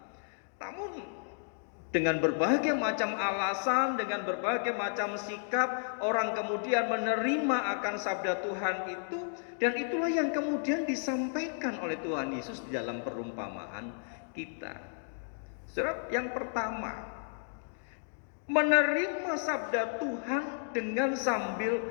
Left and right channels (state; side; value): silent; right; digital silence